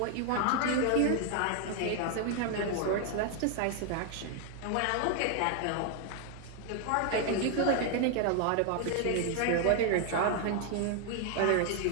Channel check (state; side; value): different; both; correlation 0.00